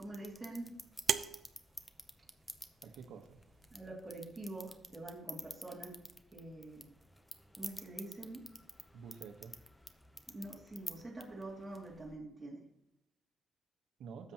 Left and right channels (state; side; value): quieter; left; 3.8 dB